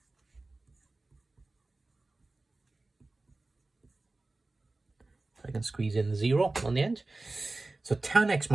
I can squeeze in the 0 on the end. So tan x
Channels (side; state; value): left; quieter; 3.2 dB